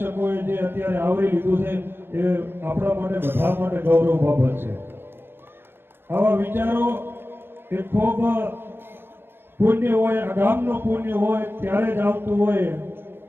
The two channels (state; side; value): late; left; 0.10 ms